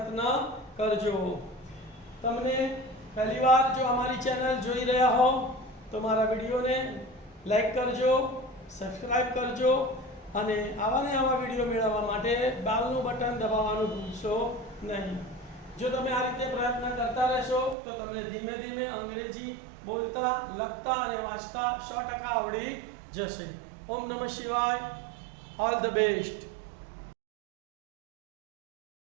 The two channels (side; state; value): left; drops out; at 17.8 s